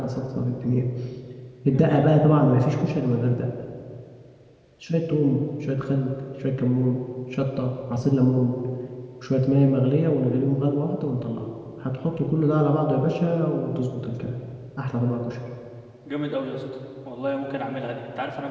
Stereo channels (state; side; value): identical; both; correlation 1.00